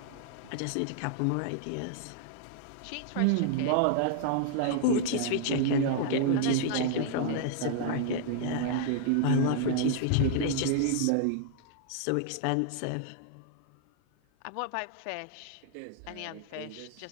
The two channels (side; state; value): both; different; correlation -0.01